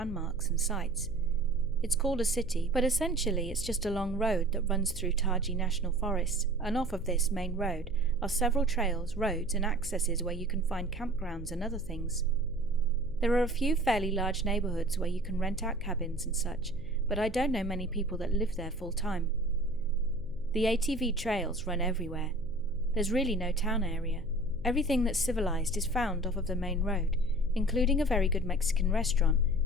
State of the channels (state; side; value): noise; right; hum, 19 dB below the sound